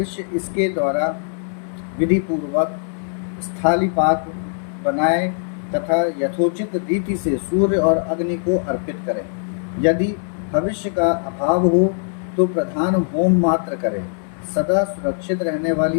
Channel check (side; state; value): right; silent; digital silence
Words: इसके द्वारा विधिपूर्वक स्थालीपाक बनाए तथा यथोचित रीति से सूर्य और अग्नि को अर्पित करें। यदि भविष्य का अभाव हो तो प्रधान होम मात्र करें। सदा सुरक्षित रहने